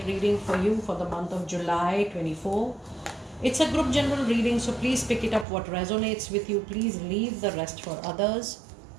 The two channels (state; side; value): drops out; left; at 5.5 s